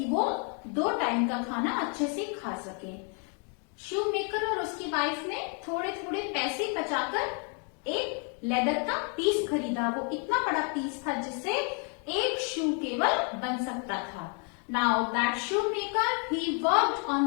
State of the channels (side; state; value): right; quieter; 39.0 dB